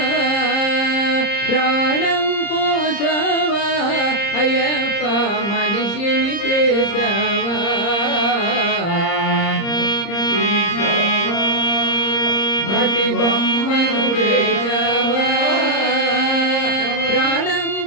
ప్రాణం పోసావా అయ్యప్ప మనిషిని చేసావా మట్టి బొమ్మను చేసావా ప్రాణం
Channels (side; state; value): right; late; 30 ms